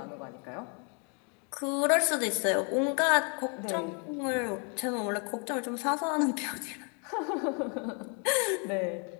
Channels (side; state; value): right; quieter; 37.1 dB